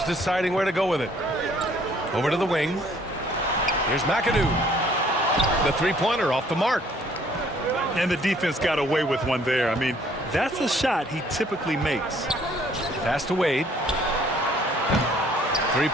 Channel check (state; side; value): normal; both; correlation 0.60